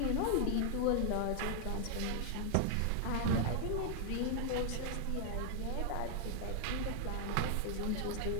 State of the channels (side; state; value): both; different; correlation 0.00